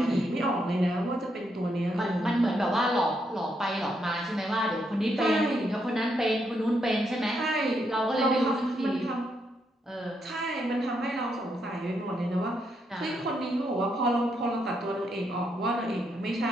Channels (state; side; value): normal; both; correlation 0.78